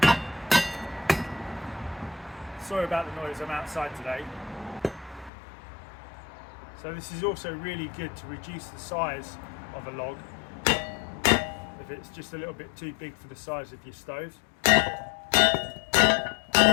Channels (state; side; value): drops out; right; at 5.3 s